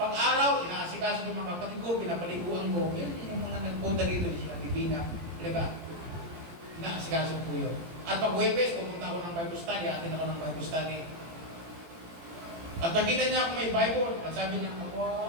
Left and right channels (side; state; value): left; late; 17 ms